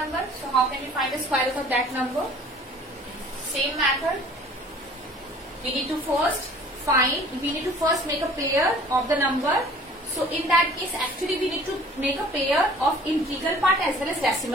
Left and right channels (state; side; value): normal; both; correlation 0.50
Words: So how can we find the square root of that number? Same method. We need to first make a pair of the number. So in that case, actually we need to make a pair of integral part as well as